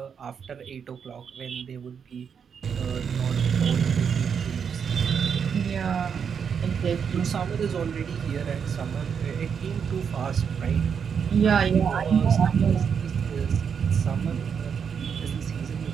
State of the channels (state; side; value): quieter; left; 7.0 dB